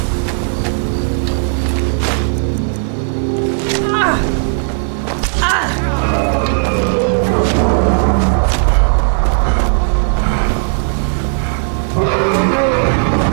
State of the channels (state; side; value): silent; left; 70 dB below the other